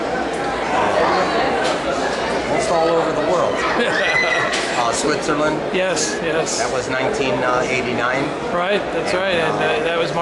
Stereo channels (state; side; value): identical; both; correlation 1.00